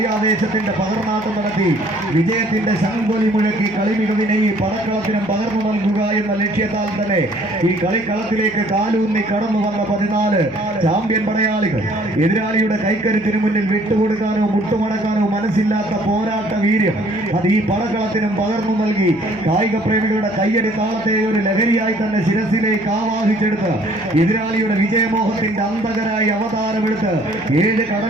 പകർന്നാട്ടം നടത്തി വിജയത്തിന്റെ ശംഖൊലി മുഴക്കി കളി മികവിനെ ഈ പടക്കളത്തിനും പകർന്നു നൽകുക എന്ന ലക്ഷ്യത്താൽ തന്നെ ഈ കളിക്കളത്തിലേക്ക് കാലൂന്നി കടന്നു വന്ന 14 ചാമ്പ്യൻ പടയാളികൾ എതിരാളിയുടെ കൈക്കരുത്തിന് മുന്നിൽ വിട്ടുകൊടുക്കാനോ മുട്ടുമടക്കാനോ മനസ്സില്ലാത്ത പോരാട്ട വീര്യം അത് ഈ പടക്കളത്തിനും പകർന്നു നൽകി കായിക പ്രേമികളുടെ കയ്യടി താളത്തെ ഒരു ലഹരിയായി തന്നെ ശിരസിലേക്ക് ആവാഹിച്ചെടുത്ത് എതിരാളിയുടെ വിജയമോഹത്തിന്റെ അന്തകരായി അവതാരമെടുത്ത് 7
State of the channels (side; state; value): right; noise; hum, 23 dB below the sound